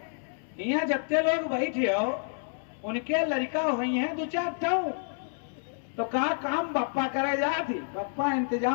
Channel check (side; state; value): right; silent; 59 dB below the other